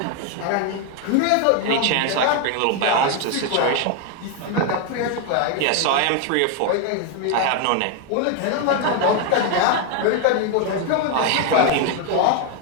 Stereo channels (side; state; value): both; different; correlation 0.01